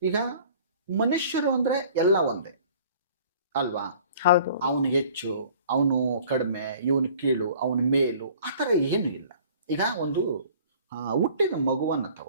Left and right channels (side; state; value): both; inverted; correlation -0.50